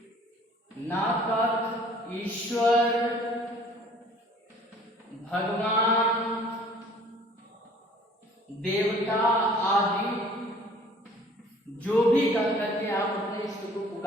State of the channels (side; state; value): both; normal; correlation 0.53